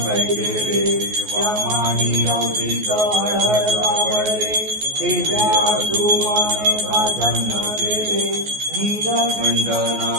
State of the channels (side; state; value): left; late; 14 ms